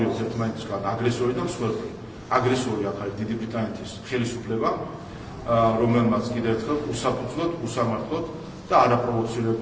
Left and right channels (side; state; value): both; identical; correlation 1.00